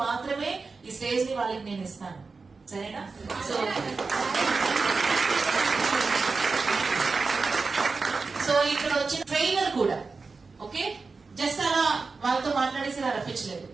మాత్రమే ఈ స్టేజ్ ని వాళ్ళకి నేను ఇస్తాను. సరేనా? సో ఇక్కడ వచ్చిన ట్రైనర్ కూడా ఓకే, జస్ట్ అలా వాళ్ళతో మాట్లాడేసి ఇలా రప్పించలేదు.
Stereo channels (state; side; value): quieter; left; 4.3 dB